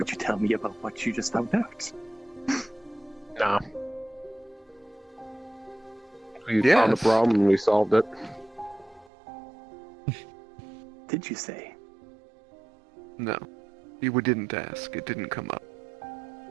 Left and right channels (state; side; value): drops out; left; at 9.1 s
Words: you tell me about what you just found out? Nah. We Yes. found the problem and we solved it. Did you say? No. You didn't ask. It didn't come up.